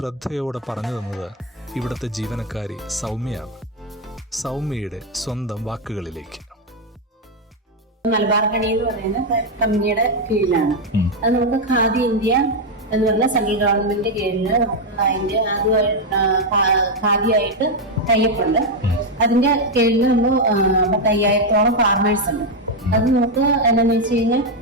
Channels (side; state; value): both; normal; correlation 0.03